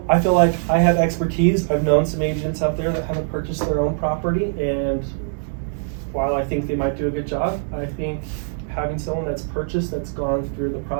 I feel like I have expertise. I've known some agents out there that haven't purchased their own property, and while I think they might do a good job, I think having someone that's purchased, that's gone through the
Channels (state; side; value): silent; left; digital silence